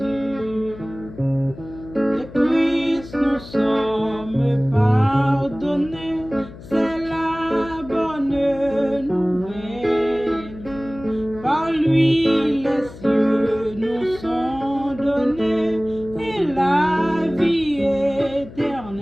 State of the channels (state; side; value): noise; left; hum, 16 dB below the sound